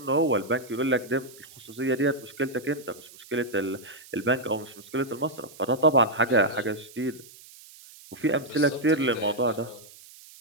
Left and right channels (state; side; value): noise; right; hiss, 21 dB below the sound